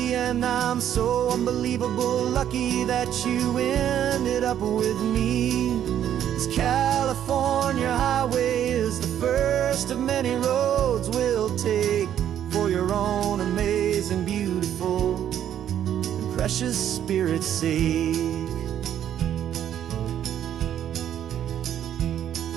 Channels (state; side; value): quieter; left; 10.3 dB